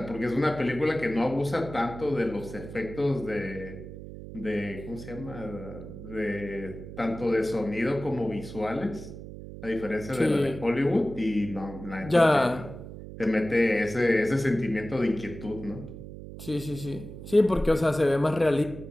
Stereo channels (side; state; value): right; noise; hum, 12 dB below the sound